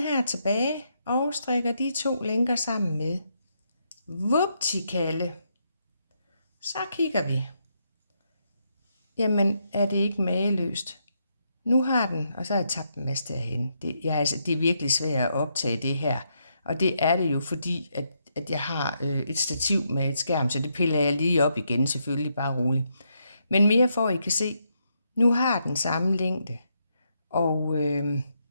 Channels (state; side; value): inverted; both; correlation -0.79